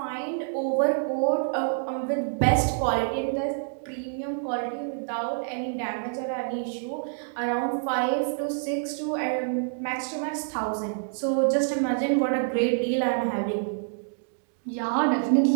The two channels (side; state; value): left; silent; digital silence